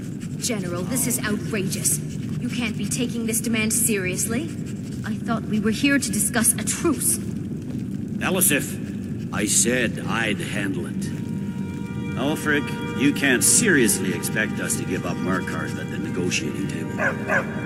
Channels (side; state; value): both; identical; correlation 1.00